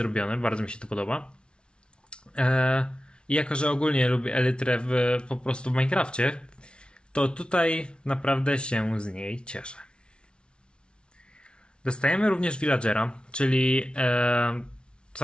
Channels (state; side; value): late; right; 0.057 ms